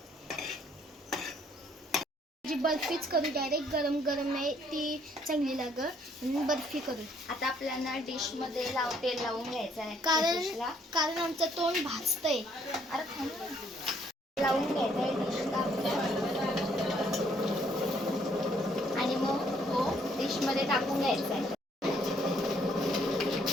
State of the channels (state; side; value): normal; both; correlation 0.67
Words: जी बर्फीच करू, डायरेक्ट गरम नाही, ती चांगली लागत. बर्फी करू. आता आपल्याला डिश मध्ये तेल लावून घ्यायचं आहे, कारण आमचं तोंड भाजतंय. अरे लावून घ्यायचं आहे डिशला आणि मग तो डिश मध्ये टाकून घ्यायचा आहे.